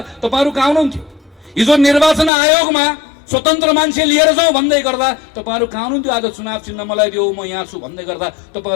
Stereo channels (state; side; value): drops out; right; at 2.3 s